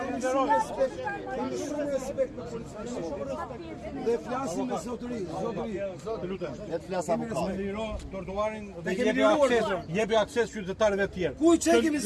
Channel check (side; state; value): both; identical; correlation 1.00